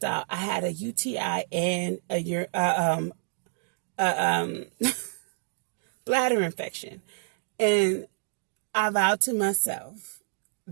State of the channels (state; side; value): silent; left; digital silence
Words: out I had a UTI and a bladder infection. And I vowed to myself